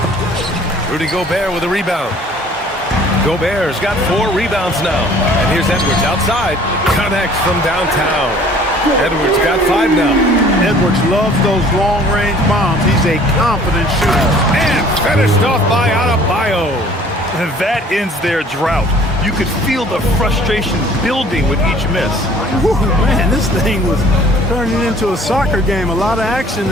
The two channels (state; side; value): normal; both; correlation 0.53